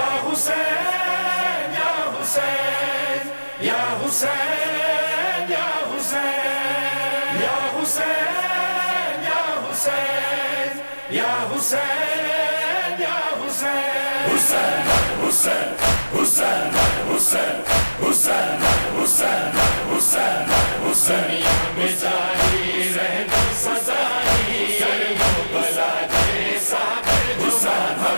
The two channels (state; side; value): inverted; both; correlation -1.00